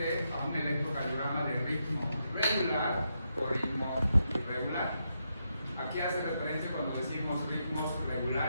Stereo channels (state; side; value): inverted; both; correlation -0.82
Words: a un electrocardiograma de ritmo regular o ritmo irregular. ¿A qué hace referencia cuando decimos ritmos